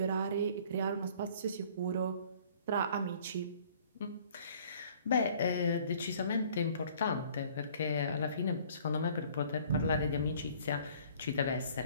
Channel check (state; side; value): inverted; both; correlation -0.54